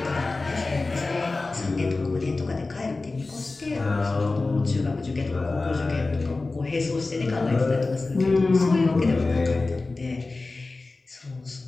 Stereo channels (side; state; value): right; quieter; 3.5 dB